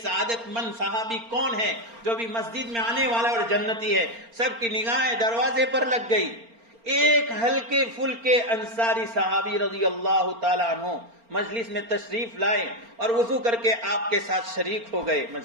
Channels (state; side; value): late; left; 4.3 ms